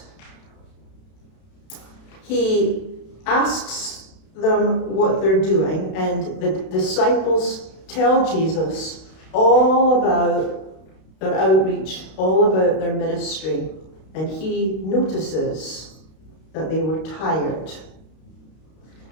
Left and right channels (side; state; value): right; late; 32 ms